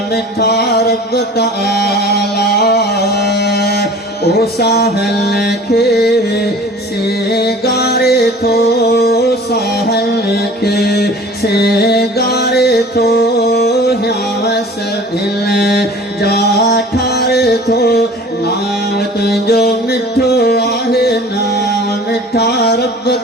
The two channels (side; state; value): both; normal; correlation 0.44